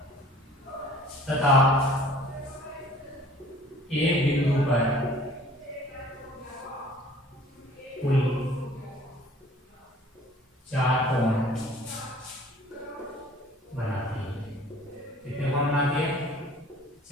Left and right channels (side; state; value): both; normal; correlation 0.50